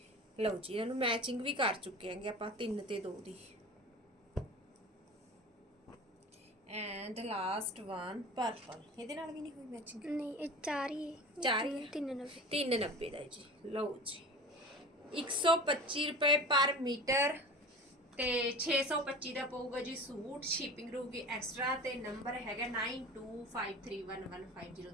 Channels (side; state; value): both; normal; correlation 0.36